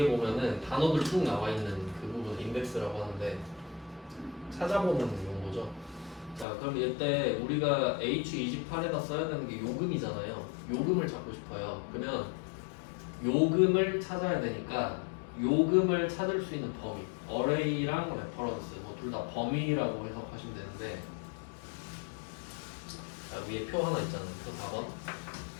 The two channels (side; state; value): right; drops out; at 6.5 s